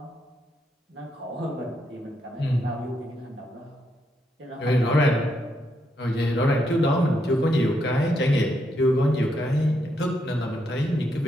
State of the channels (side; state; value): both; normal; correlation 0.79